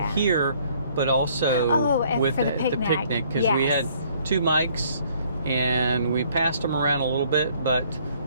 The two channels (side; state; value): both; inverted; correlation -0.62